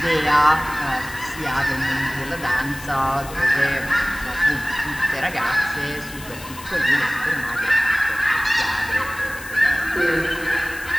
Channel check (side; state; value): left; noise; hiss, 16 dB below the sound